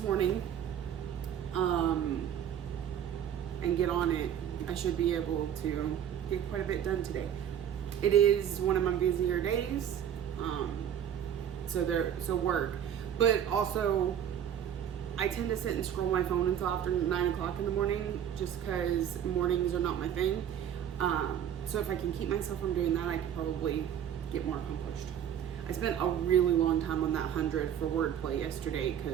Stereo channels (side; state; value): left; quieter; 9.5 dB